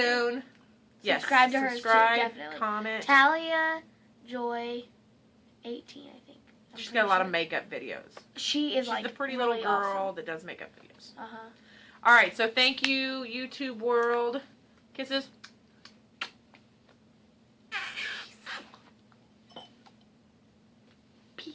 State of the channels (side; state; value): both; identical; correlation 1.00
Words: Too. Yes, subscribe to hers too, definitely. Comment. Talia Joy 18, I think. She's got a lot of makeup videos. She's the pretty really little girl awesome. that does makeup videos. Uh-huh. All right, so thank you, YouTube world. Kisses.